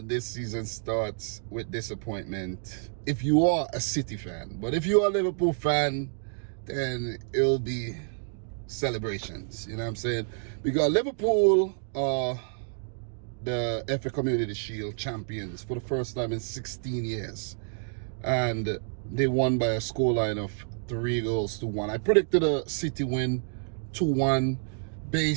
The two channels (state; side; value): silent; left; digital silence